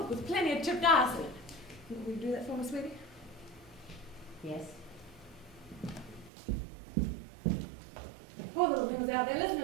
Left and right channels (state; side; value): drops out; left; at 6.3 s